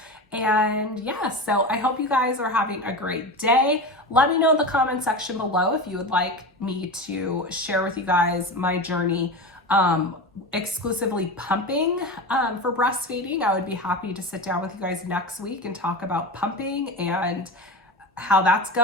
And yeah, so I hope you guys are having a great day. Let me know in the comment section below if you would like me to share with you guys my journey exclusively pumping for breastfeeding. I would be happy to sit down with you guys next week and talk about pumping and how that's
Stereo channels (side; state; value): both; normal; correlation 0.25